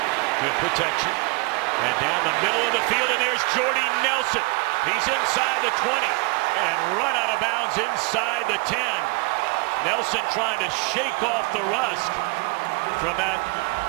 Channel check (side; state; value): left; quieter; 29.3 dB